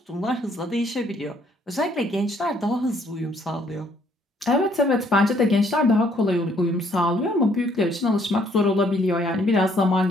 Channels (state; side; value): normal; both; correlation 0.66